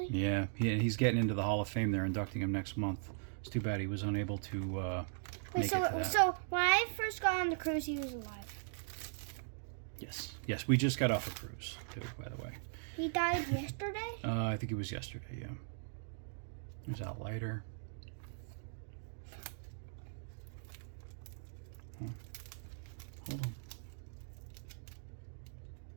Yeah, he's getting into the Hall of Fame. They're inducting him next month. It's too bad he was unable to make it to that. So when I first got on the cruise, he was alive. Yes, we just got off a cruise too, by the way. He died yesterday? I think it was yesterday, yeah. There's Al Leiter. Hold on.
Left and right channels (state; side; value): silent; left; digital silence